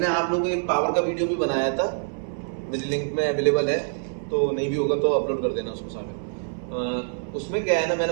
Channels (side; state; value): left; silent; 62 dB below the other